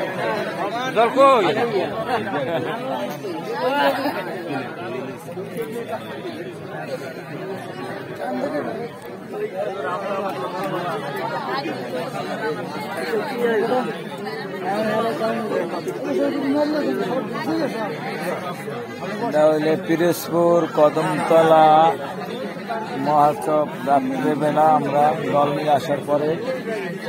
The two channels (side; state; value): both; identical; correlation 1.00